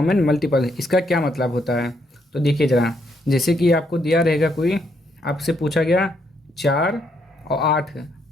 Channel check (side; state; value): both; normal; correlation 0.74